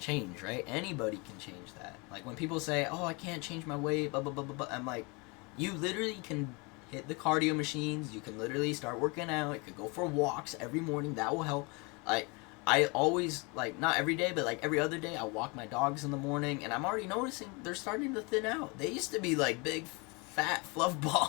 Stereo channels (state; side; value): quieter; right; 28.9 dB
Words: right? Anybody can change that. Like when people say, "Oh, I can't change my weight," blah blah blah blah blah. I'm like, you literally can hit the cardio machines. You can literally start working out. You could go for walks every morning. That will help. Like I always, like, not every day, but like every other day, I walk my dogs in the morning, and I'm already noticing they're starting to thin out. They used to be like big, fat fluff